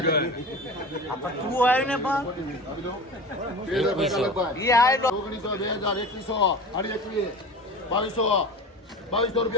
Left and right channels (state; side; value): normal; both; correlation 0.33